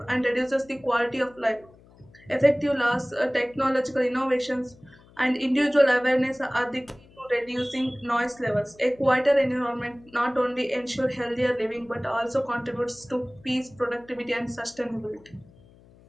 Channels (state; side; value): noise; left; hum, 26 dB below the sound